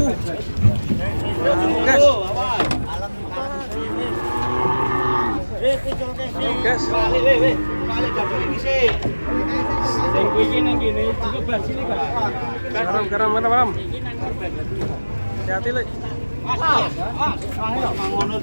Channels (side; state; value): both; inverted; correlation -1.00